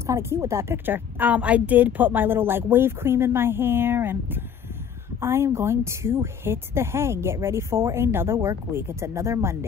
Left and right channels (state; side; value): quieter; right; 7.9 dB